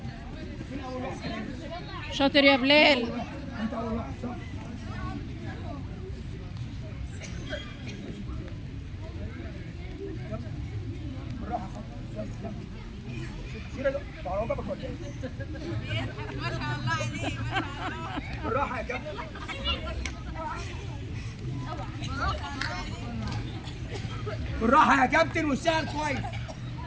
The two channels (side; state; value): both; identical; correlation 1.00